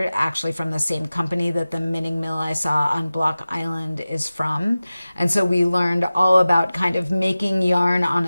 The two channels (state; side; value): inverted; both; correlation -0.96